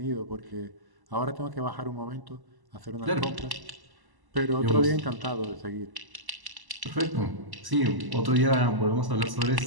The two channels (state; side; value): late; left; 1.1 ms